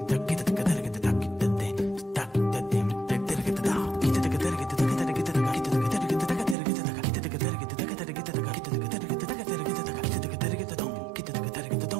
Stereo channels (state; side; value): drops out; left; at 6.6 s